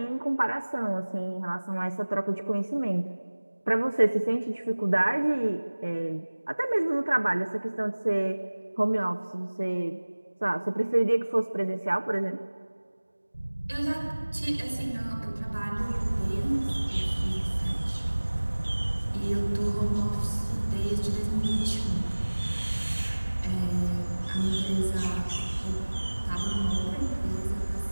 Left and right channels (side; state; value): both; inverted; correlation -1.00